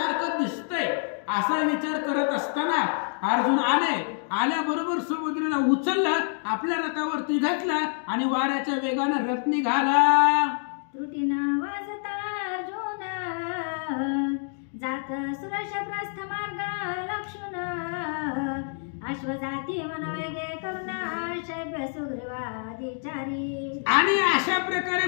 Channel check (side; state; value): right; silent; 58 dB below the other